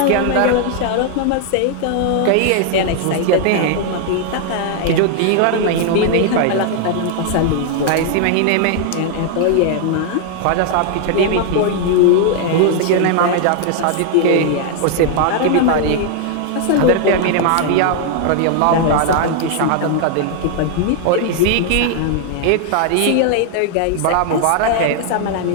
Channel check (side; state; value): both; different; correlation 0.00